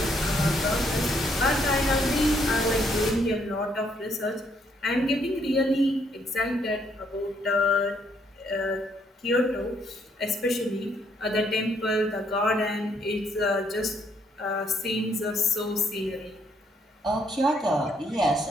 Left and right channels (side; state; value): both; normal; correlation 0.70